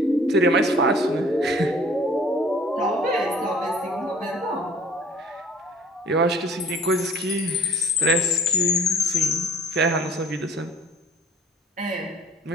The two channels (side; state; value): both; normal; correlation 0.52